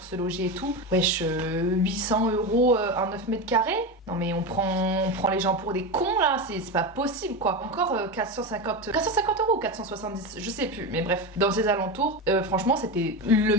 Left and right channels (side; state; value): both; normal; correlation 0.19